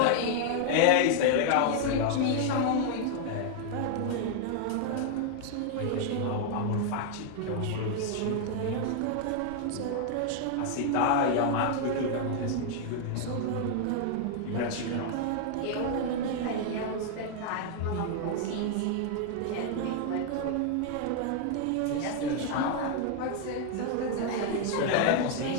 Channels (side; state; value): both; different; correlation 0.00